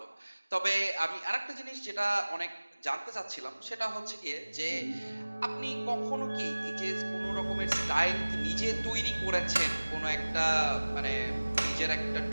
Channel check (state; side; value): inverted; both; correlation -1.00